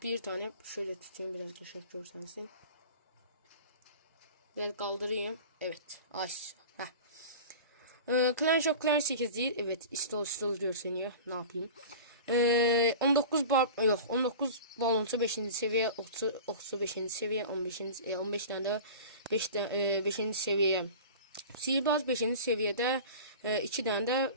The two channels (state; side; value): inverted; both; correlation -0.36